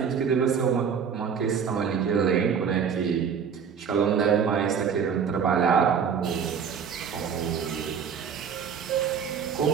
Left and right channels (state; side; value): quieter; left; 7.0 dB